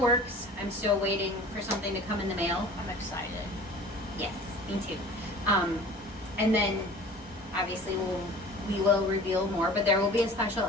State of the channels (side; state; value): both; normal; correlation 0.44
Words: I'm still waiting for something to come in the mail. I'm excited. Yes, me too. And then obviously we will reveal more, but there will be a special